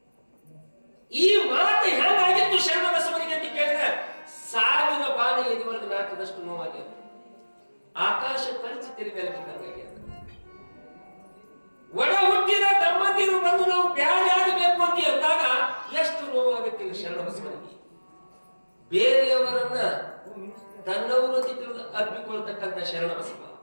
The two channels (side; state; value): both; inverted; correlation -1.00